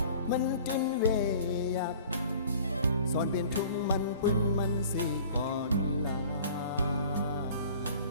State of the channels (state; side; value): inverted; both; correlation -0.47